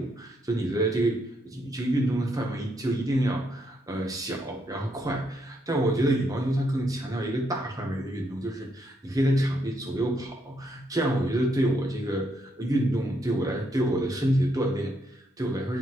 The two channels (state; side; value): normal; both; correlation 0.76